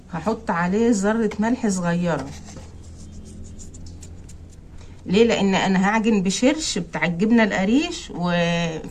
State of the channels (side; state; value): both; identical; correlation 1.00